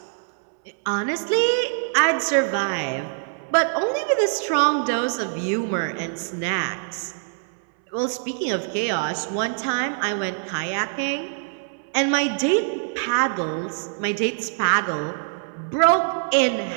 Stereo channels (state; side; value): silent; left; 63 dB below the other